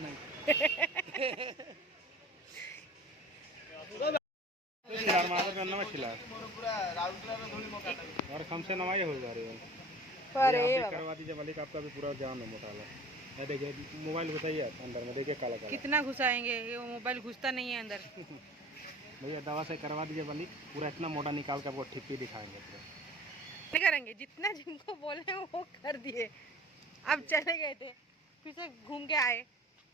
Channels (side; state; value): both; normal; correlation 0.44